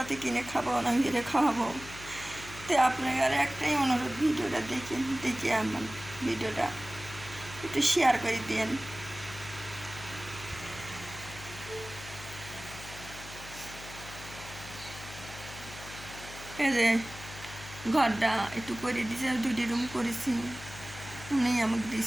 কিনে খাবো না, মেরে খাওয়াবো। তো আপনার একটাই অনুরোধ, ভিডিওটা দেখে আমার ভিডিওটা একটু শেয়ার করে দিন। এই যে ঘরটা একটু করে দিছে, 2টি রুম করেছি, উনি আমাকে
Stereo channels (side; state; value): left; noise; hum, 14 dB below the sound